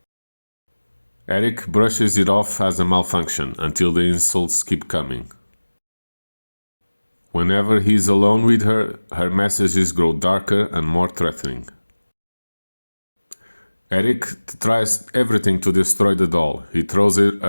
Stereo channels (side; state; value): both; inverted; correlation -1.00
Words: Eric brushes it off as a malfunction until the insults keep coming. Whenever he's alone with her, her messages grow darker and more threatening. Eric tries everything to destroy the doll. He throws